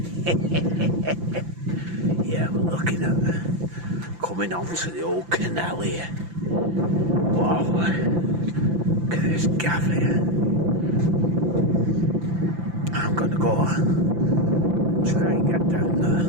Yeah, we're looking at coming on to the old canal here. Wow. Look at this gaff here. I'm gonna go and try and get down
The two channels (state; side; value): late; left; 5.9 ms